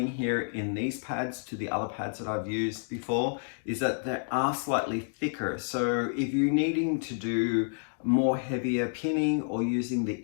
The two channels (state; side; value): silent; right; digital silence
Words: here in these pads to the other pads that I've used before is that they are slightly thicker. So if you're needing to do more heavier pinning or using the